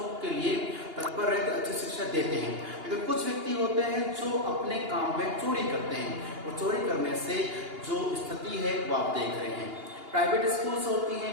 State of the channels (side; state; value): left; late; 2.8 ms